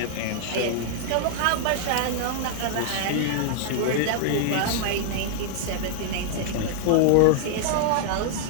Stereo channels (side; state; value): both; different; correlation -0.01